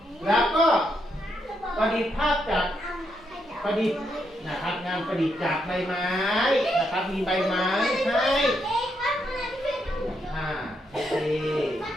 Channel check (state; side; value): normal; both; correlation 0.79